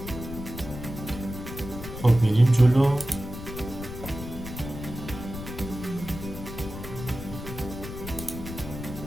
خب میریم جلو.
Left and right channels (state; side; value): noise; left; rumble, 10 dB below the sound